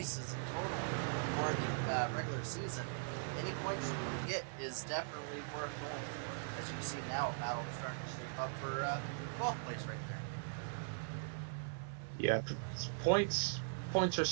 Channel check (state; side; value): silent; left; 51 dB below the other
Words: in total for the regular season, any points you can get is definitely worth going for. As you see now, a battle starting to shape up for 12th place right Yeah, points are